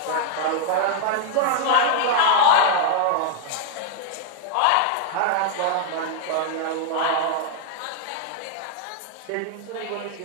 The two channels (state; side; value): different; both; correlation -0.01